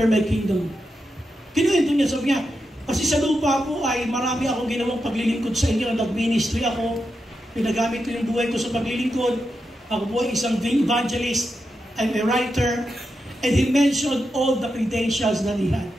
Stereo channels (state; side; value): normal; both; correlation 0.87